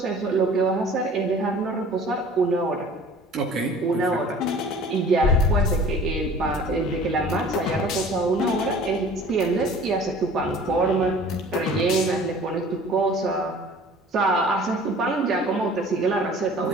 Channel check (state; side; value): normal; both; correlation 0.47